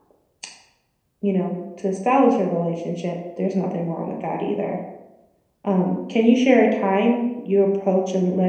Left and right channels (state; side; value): identical; both; correlation 1.00